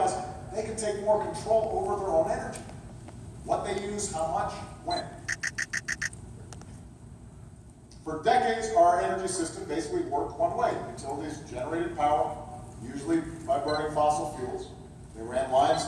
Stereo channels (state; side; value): identical; both; correlation 1.00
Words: they can take more control over their own energy. What they use, how much, when. For decades, our energy system basically worked one way. Utilities generated power, usually by burning fossil fuels. They ran lines